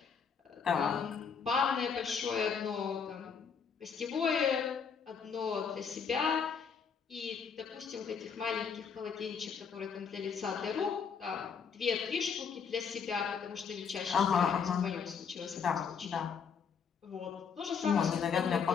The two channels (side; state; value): right; quieter; 6.4 dB